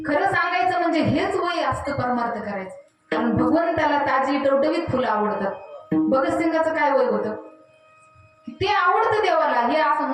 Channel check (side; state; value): both; identical; correlation 1.00